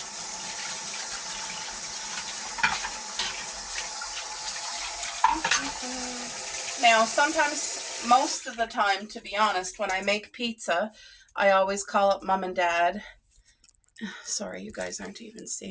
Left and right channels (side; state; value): both; identical; correlation 1.00